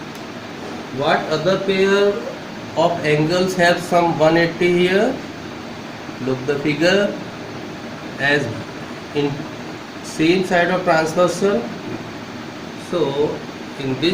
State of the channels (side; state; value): both; identical; correlation 1.00